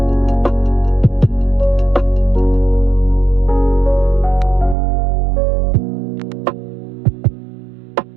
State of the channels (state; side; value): drops out; left; at 4.8 s